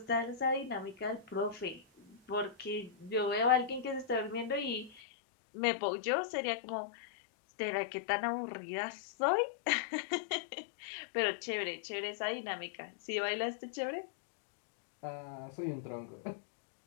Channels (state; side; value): drops out; right; at 5.0 s